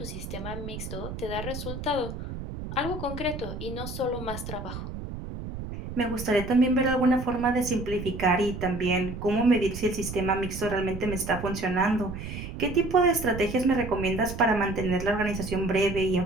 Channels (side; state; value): right; noise; rumble, 8 dB below the sound